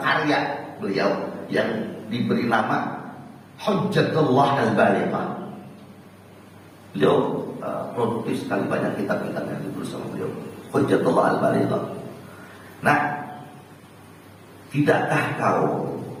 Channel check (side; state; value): both; identical; correlation 1.00